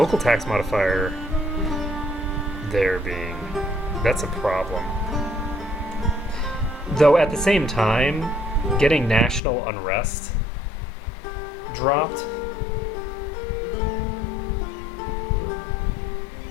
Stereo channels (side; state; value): right; drops out; at 9.4 s